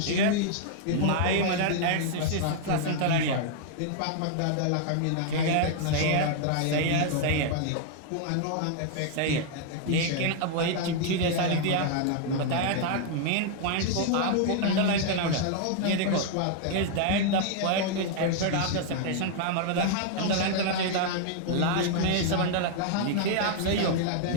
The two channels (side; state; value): both; different; correlation 0.00